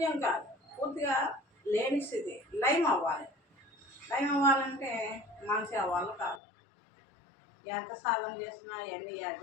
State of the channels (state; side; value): drops out; right; at 6.4 s